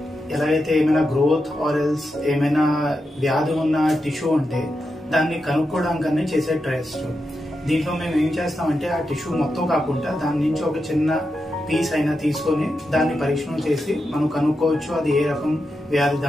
ఎలాగైతే ఏమైనా గ్రోత్ ఆర్ ఎల్స్ ఏమైనా వ్యాధి ఉన్న టిష్యూ ఉంటే దాన్ని కనుక్కోవడానికనే చేసే టెస్ట్. దీంట్లో మేము ఏం చేస్తామంటే ఆ టిష్యూ మొత్తం కాకుండా దాని నుంచి ఒక చిన్న పీస్ అయినా తీసుకొని దాన్ని పరీక్షణ చేసి మనం కనుక్కోవచ్చు అది ఏ రకం వ్యాధి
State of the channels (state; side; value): normal; both; correlation 0.87